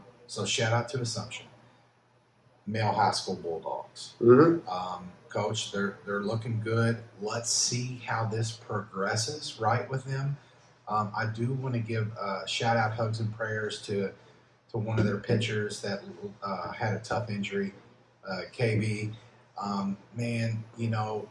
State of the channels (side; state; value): both; identical; correlation 1.00